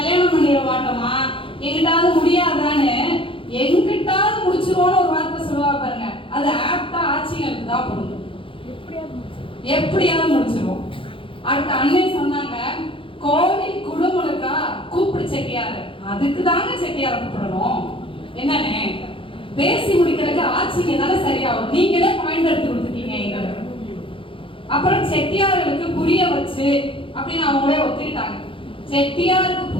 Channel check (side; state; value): right; late; 0.25 ms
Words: பண்ணிட மாட்டோமா? எங்கிட்டாவது முடியாதான்னு எங்கிட்டாவது முடிச்சிருவோம்னு ஒரு வார்த்தை சொல்லுவா பாருங்க. அது ஆப்டா ஆட்சிகளுக்கு தான் பொருந்தும். எப்படியாவது முடிச்சிருவோம். அடுத்த அண்ணன் சொன்னாங்க, கோவில் குடுமுழுக்கா கூப்பிடு செட்டியாரு. அதுக்கு தாங்க செட்டியார கூப்பிடணும். என்னன்னு பேசி முடிக்கிறதுக்கு ஆட்சிங்க தானே சரியாகும். நீங்களே பாயிண்ட் எடுத்து கொடுத்துட்டீங்க எங்களுக்கு. அப்புறம் செட்டியார்களுக்கு புரிய வச்சு அப்படின்னு அவங்களே ஒத்துக்கிட்டாங்க. செட்டியாருக்கு